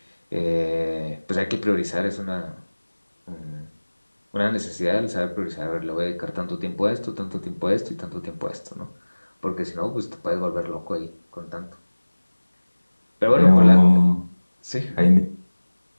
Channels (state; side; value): inverted; both; correlation -1.00